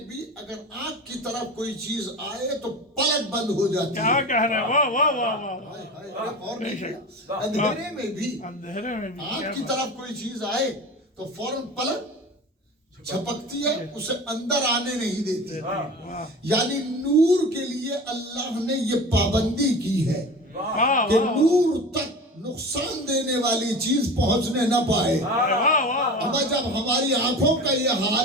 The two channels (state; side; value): normal; both; correlation 0.33